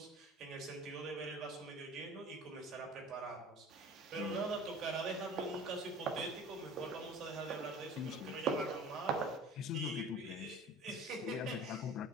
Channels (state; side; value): normal; both; correlation 0.43